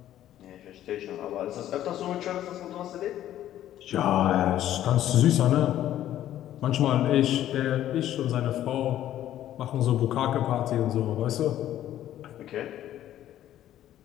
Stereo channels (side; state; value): right; quieter; 12.3 dB